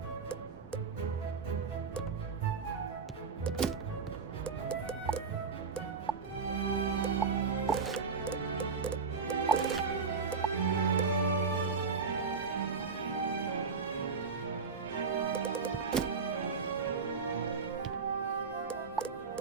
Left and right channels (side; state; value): left; quieter; 5.1 dB